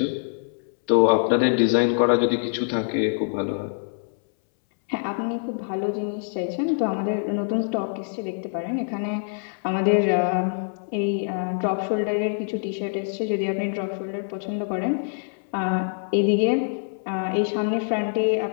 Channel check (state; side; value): silent; right; 62 dB below the other